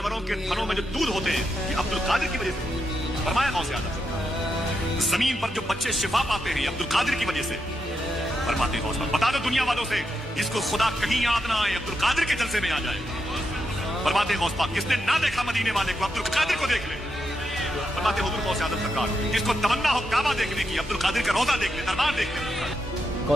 کے تھنوں میں جو دودھ ہوتے ہیں یہ عبد القادر کی وجہ سے، فرمایا غوث اعظم۔ زمین پر جو بچے شفا پاتے ہیں یہ عبد القادر کی وجہ سے، فرماتے غوث پاک۔ بتا دو دنیا والوں سے جس کو خدا کہیں یاد نہ آئے عبد القادر کے جلسے میں آ جائے، فرماتے غوث پاک جس نے نہ دیکھا مدینے والے کو عبد القادر کو دیکھ لے، فرماتے حضور غوث اعظم سرکار جس کو تمنا ہو کعبہ دیکھنے کی عبد القادر کا روضہ دیکھ لے، دربار دیکھ لے۔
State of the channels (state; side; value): normal; both; correlation 0.84